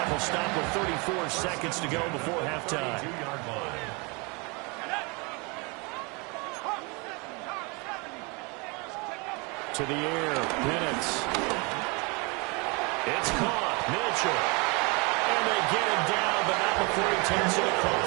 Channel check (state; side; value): quieter; left; 29.8 dB